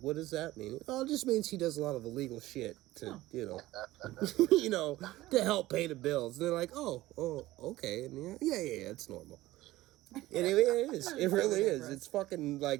does that mean? Oh, it just means he does a lot of illegal shit to, you know, you know, to help pay the bills. And they're like, oh, okay. And yeah, it's normal. And it is. It really is. It's fucking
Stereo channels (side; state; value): left; quieter; 17.0 dB